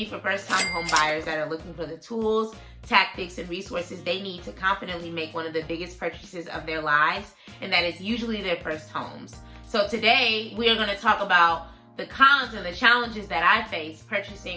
for first-time home buyers that are looking for the tools, tactics, and resources they need to confidently make one of the biggest purchases of their lives, and that is usually their first homes. So today we are going to talk about the cons and the challenges that I face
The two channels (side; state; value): both; identical; correlation 1.00